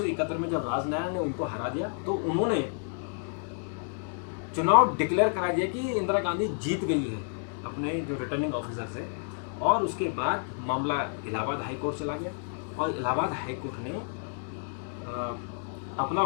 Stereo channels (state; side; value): silent; right; 56 dB below the other